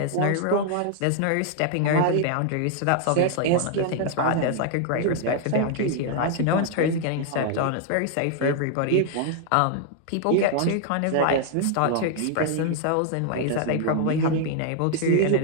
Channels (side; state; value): both; different; correlation 0.00